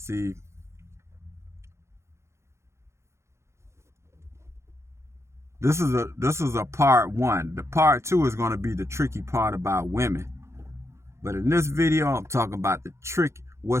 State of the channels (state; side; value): late; left; 0.13 ms